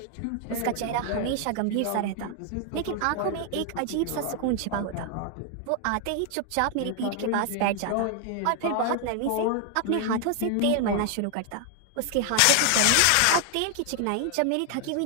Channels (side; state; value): both; different; correlation 0.00